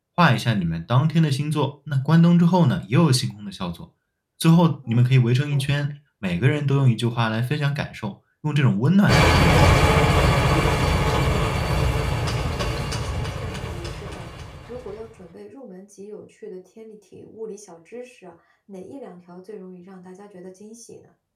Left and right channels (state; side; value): identical; both; correlation 1.00